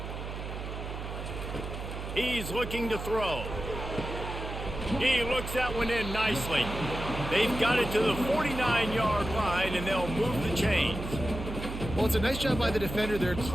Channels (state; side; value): noise; right; hum, 7 dB below the sound